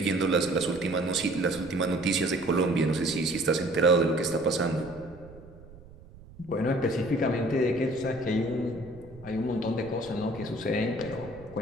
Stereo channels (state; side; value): noise; right; rumble, 20 dB below the sound